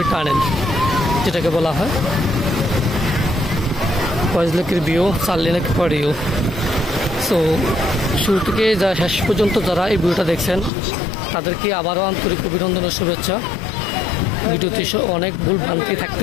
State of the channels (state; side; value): drops out; right; at 10.7 s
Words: টানেল যেটাকে বলা হয়। কয়েকলেকের ভিউ, 4 লেনের পরেও। সো শুরু থেকে যা শেষ পর্যন্ত যারা এই ভিডিওটা দেখছেন, তাদেরকে আবারও আন্তরিক অভিনন্দন ও শুভেচ্ছা। ভিডিওতে অনেক ভুল ভ্রান্তি